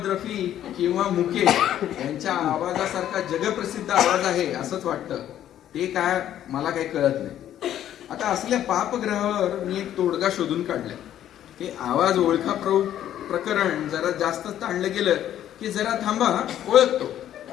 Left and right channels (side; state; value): right; quieter; 11.4 dB